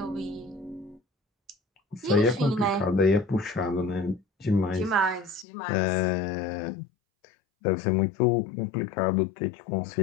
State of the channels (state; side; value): drops out; right; at 5.5 s